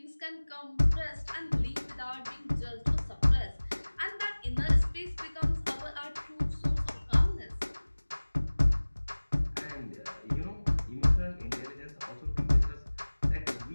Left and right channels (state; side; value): inverted; both; correlation -1.00